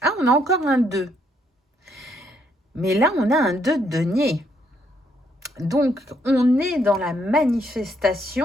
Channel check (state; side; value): normal; both; correlation 0.72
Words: Ah, on a encore un 2. Mais là, on a un 2 de denier. Donc, on est dans la